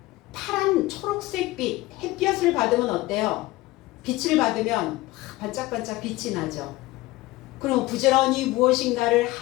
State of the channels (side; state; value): right; quieter; 19.1 dB